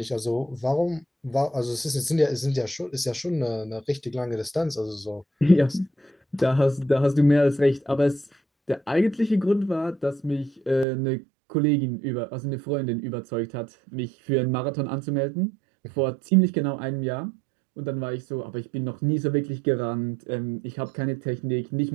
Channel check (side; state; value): left; drops out; at 10.9 s